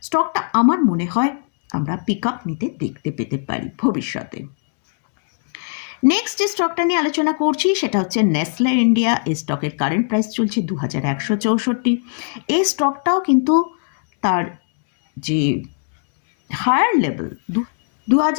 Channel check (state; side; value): silent; right; digital silence